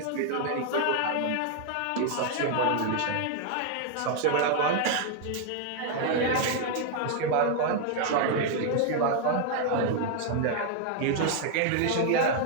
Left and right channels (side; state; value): both; different; correlation 0.00